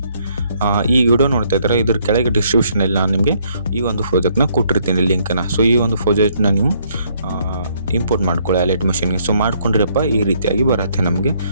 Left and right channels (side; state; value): both; inverted; correlation -0.68